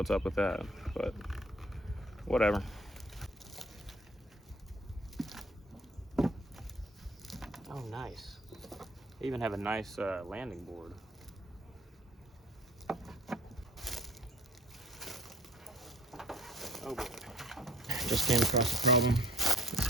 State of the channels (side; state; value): both; normal; correlation 0.54